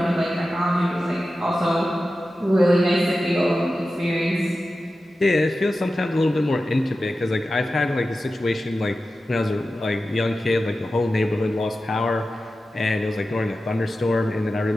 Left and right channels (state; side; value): normal; both; correlation 0.93